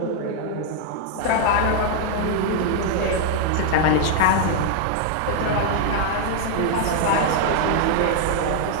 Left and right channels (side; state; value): both; different; correlation 0.00